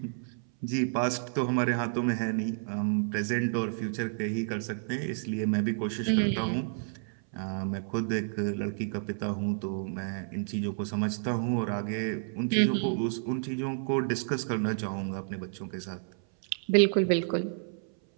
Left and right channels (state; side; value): silent; left; 58 dB below the other